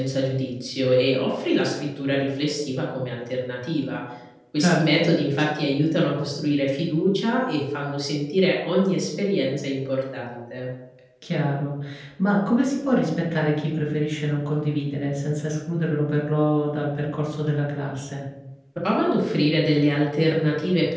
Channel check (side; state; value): both; identical; correlation 1.00